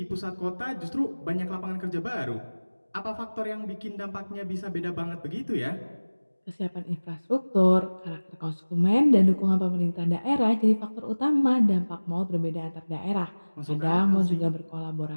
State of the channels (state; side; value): inverted; both; correlation -1.00